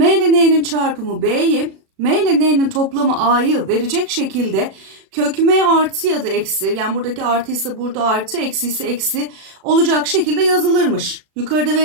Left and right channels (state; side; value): late; left; 36 ms